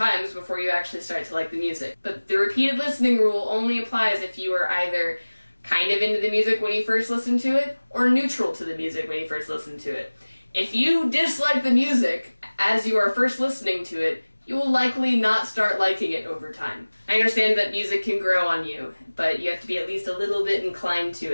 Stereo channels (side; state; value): both; inverted; correlation -1.00